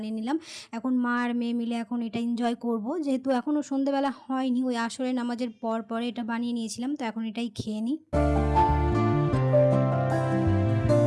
নিলাম। এখন মা আর মেয়ে মিলে এখন এটা এনজয় করব, যেহেতু এখনও সন্ধ্যেবেলা হয়নি, ওই আসরের নামাজের পর পরে এটা বানিয়ে নিয়েছিলাম, তো এখন এটাই খেয়ে নিই।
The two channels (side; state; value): both; identical; correlation 1.00